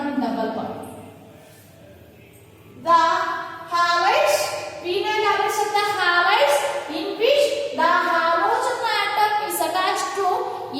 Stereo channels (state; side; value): identical; both; correlation 1.00